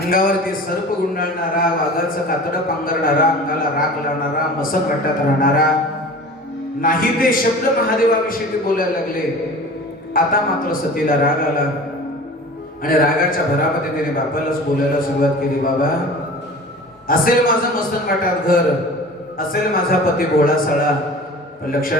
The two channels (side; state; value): both; normal; correlation 0.39